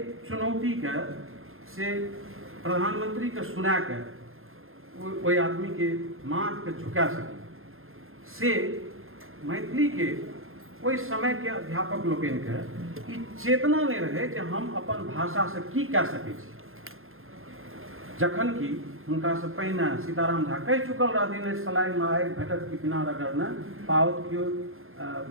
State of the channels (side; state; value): left; late; 0.61 ms